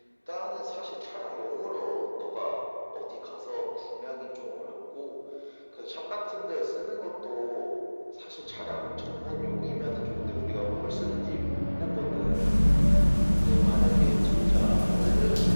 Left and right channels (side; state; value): both; inverted; correlation -1.00